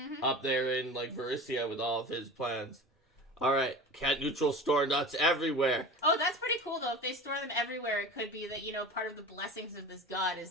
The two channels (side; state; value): both; normal; correlation 0.33